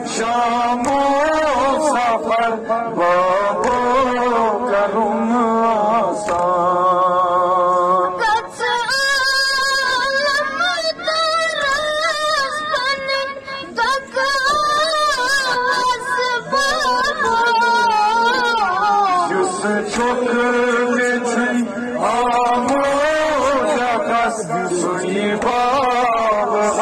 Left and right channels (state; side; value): identical; both; correlation 1.00